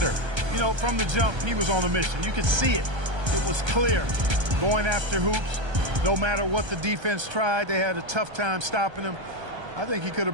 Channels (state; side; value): late; left; 1.3 ms